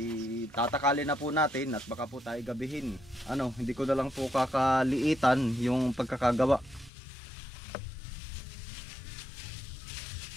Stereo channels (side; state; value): right; drops out; at 6.9 s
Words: itatakalin na po natin at baka po tayo gabihin. Ano, hindi ko na lang po kakaliitan yung pagkakagawa.